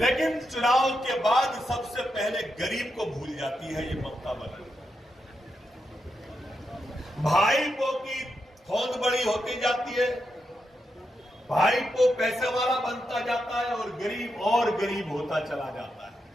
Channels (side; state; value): both; normal; correlation 0.85